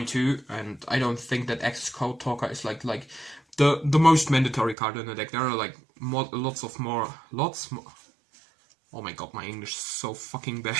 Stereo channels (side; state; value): left; drops out; at 4.8 s